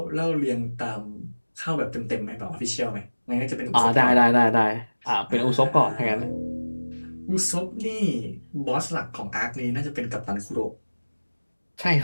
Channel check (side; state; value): both; inverted; correlation -1.00